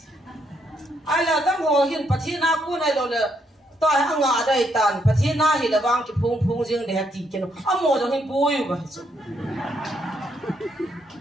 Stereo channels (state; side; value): normal; both; correlation 0.75